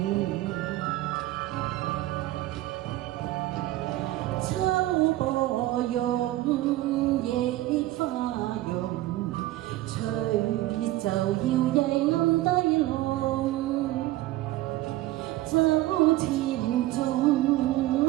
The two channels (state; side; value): quieter; left; 16.4 dB